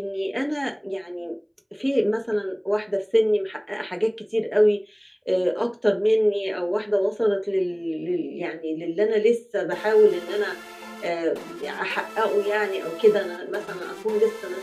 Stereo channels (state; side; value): identical; both; correlation 1.00